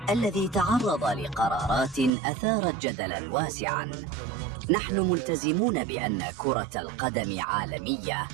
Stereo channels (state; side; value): drops out; left; at 2.1 s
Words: الذي تعرض لقرارات أثارت جدلاً واسعاً. نحن ملتزمون بأن كرة القدم عالمية،